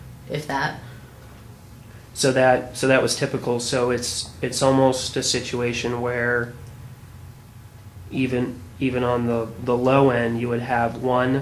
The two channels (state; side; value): identical; both; correlation 1.00